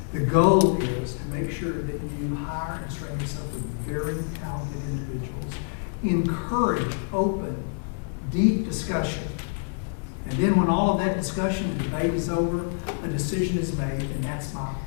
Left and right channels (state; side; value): silent; right; 61 dB below the other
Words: The goal is to make sure that you hire and surround yourself with very talented individuals. Encourage open, deep discussion. And then when all of that discussion and debate is over, a decision is made, and that's my